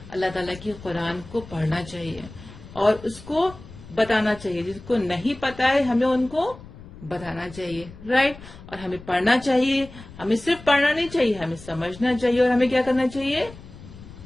अल्लाह ताला की कुरान को पढ़ना चाहिए और उसको बताना चाहिए. जिसको नहीं पता है हमें उनको बताना चाहिए. राइट? और हमें पढ़ना चाहिए. हमें सिर्फ पढ़ना नहीं चाहिए, हमें समझना चाहिए. और हमें क्या करना चाहिए?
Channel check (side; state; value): left; noise; rumble, 18 dB below the sound